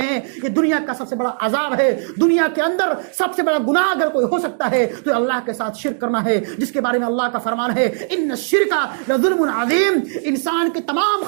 ہیں. یہ دنیا کا سب سے بڑا عذاب ہے. دنیا کے اندر سب سے بڑا گناہ اگر کوئی ہو سکتا ہے تو اللہ کے ساتھ شرک کرنا ہے، جس کے بارے میں اللہ کا فرمان ہے ان الشرک لظلم عظیم. انسان کے تمام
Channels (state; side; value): silent; left; digital silence